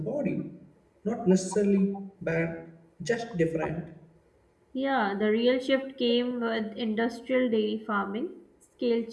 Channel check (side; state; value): both; identical; correlation 1.00